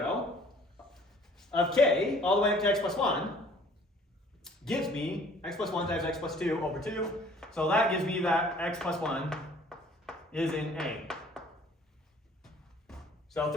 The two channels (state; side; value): normal; both; correlation 0.54